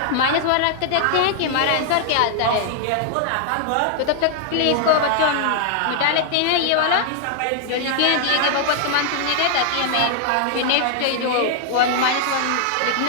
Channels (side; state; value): both; different; correlation -0.01